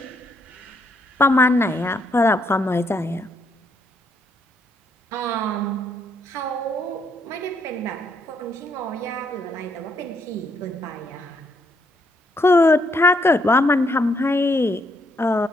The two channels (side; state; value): both; normal; correlation 0.73